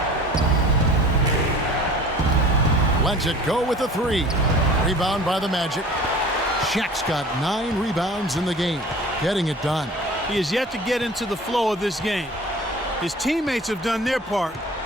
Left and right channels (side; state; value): both; normal; correlation 0.44